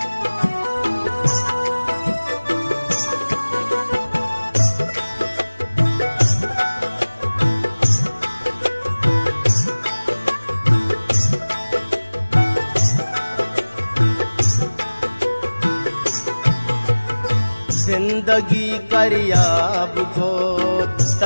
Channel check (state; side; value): inverted; both; correlation -1.00